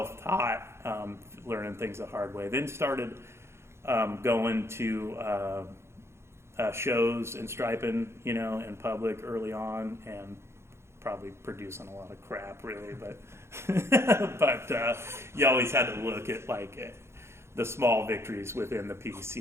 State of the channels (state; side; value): late; left; 0.13 ms